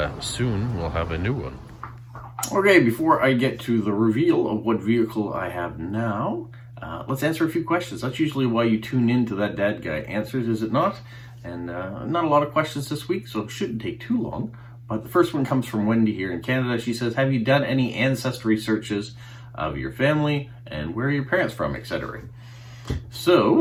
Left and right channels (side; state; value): both; identical; correlation 1.00